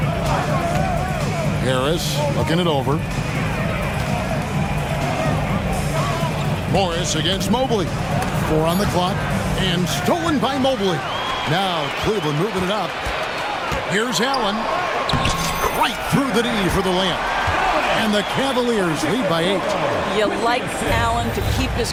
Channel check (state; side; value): identical; both; correlation 1.00